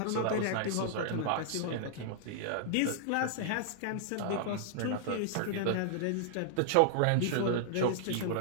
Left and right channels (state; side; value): different; both; correlation -0.01